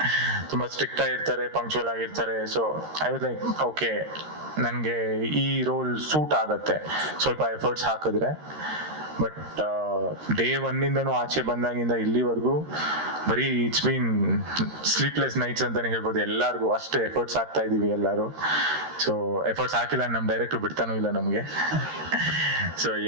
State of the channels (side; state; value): left; late; 13 ms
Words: ತುಂಬಾ ಸ್ಟ್ರಿಕ್ಟ್ ಆಗಿರ್ತಾರೆ, ಪಂಕ್ಚುವಲ್ ಆಗಿರ್ತಾರೆ. So I was like okay, ನನಗೆ ಈ ರೋಲ್ ಸೂಟ್ ಆಗತ್ತೆ ಸ್ವಲ್ಪ ಎಫರ್ಟ್ಸ್ ಹಾಕಿದ್ರೆ. ಬಟ್ ಡೇ ಒನ್ನಿಂದನೂ ಆಚೆ ಬಂದಾಗಿಂದ ಇಲ್ಲಿವರೆಗೂ ಬರೀ ಇಟ್ಸ್ ಬೀನ್ ಸ್ಲೀಪ್ಲೆಸ್ ನೈಟ್ಸ್ ಅಂತಾನೆ ಹೇಳ್ಬೋದು. ಎಲ್ಲರಿಗೂ ಅಷ್ಟು ಎಫರ್ಟ್ಸ್ ಹಾಕ್ತಾ ಇದೀವಿ ಎಲ್ಲರೂ. ಸೊ ಎಫರ್ಟ್ಸ್ ಹಾಕಿಲ್ಲ ನಮ್ಮ ಡೈರೆಕ್ಟರ್ ಬಿಡ್ತಾನೂ ಇಲ್ಲ ನಮಗೆ. So